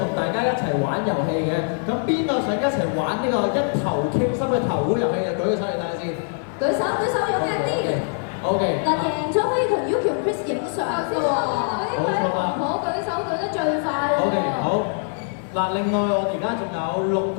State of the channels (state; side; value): silent; right; 62 dB below the other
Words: 同大家一齊玩遊戲嘅。咁邊個想一齊玩呢個一頭傾心嘅頭壺遊戲？就舉個手嚟睇下先。舉手踴躍啲。OK。嗱，贏咗可以同 Yuki 同 Chris 影相㗎喎。冇錯啦。我舉手舉得最快喎。OK， 好。嗱，另外我而家仲有6